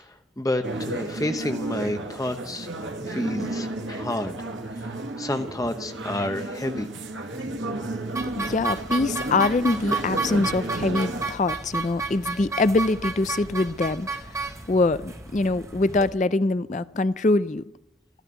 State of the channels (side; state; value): both; normal; correlation 0.58